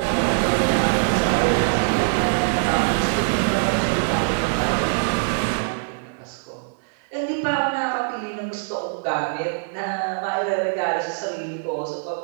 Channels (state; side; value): silent; left; digital silence